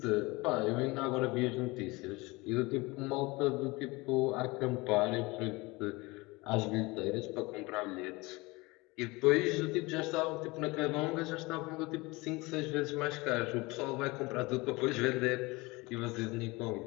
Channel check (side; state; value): right; quieter; 23.6 dB